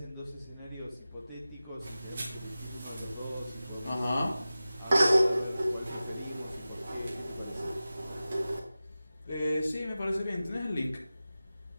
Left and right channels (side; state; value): both; inverted; correlation -0.95